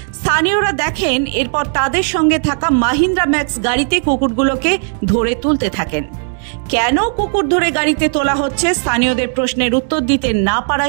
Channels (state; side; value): silent; left; 67 dB below the other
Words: স্থানীয়রা দেখেন, এরপর তাদের সঙ্গে থাকা মাহিন্দ্রা ম্যাক্স গাড়িতে কুকুরগুলোকে ধরে তুলতে থাকেন। কেন কুকুর ধরে গাড়িতে তোলা হচ্ছে, স্থানীয়দের প্রশ্নের উত্তর দিতে না